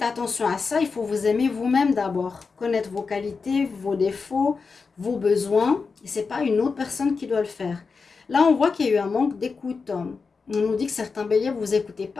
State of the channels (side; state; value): right; quieter; 4.8 dB